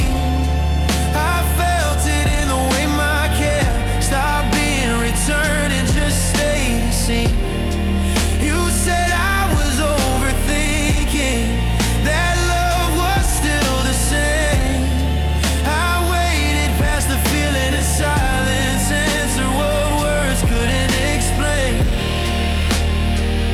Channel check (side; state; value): both; identical; correlation 1.00